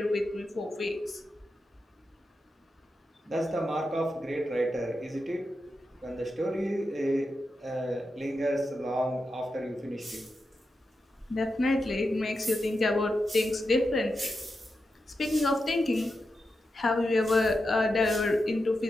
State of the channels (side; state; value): both; normal; correlation 0.88